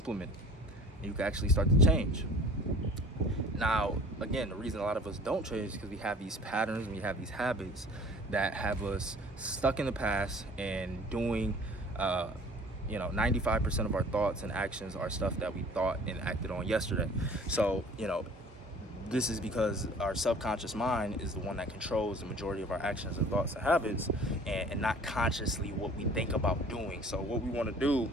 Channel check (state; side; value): normal; both; correlation 0.48